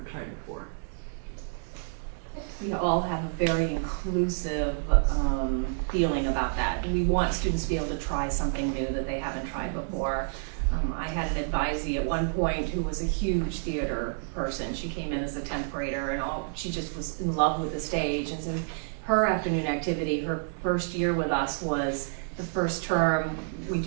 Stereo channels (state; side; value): silent; left; digital silence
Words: tried before? We all have a very inclusive feeling about that. We want students to be able to try something new that they haven't tried before. I had an advisee at one point who was a huge theater person. She came in as a 10th grader and she just was in love with the stage. And so her afternoon activity, her first year with us was the first term. We